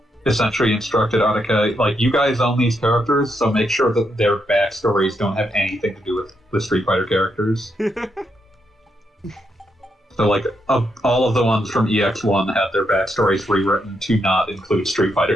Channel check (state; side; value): normal; both; correlation 0.80